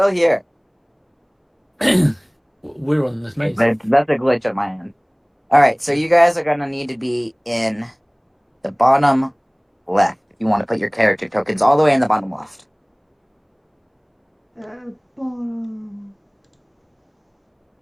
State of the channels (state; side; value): identical; both; correlation 1.00